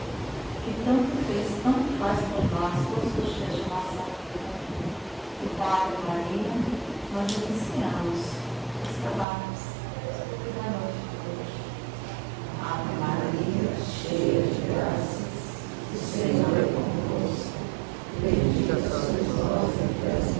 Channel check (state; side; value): drops out; left; at 9.2 s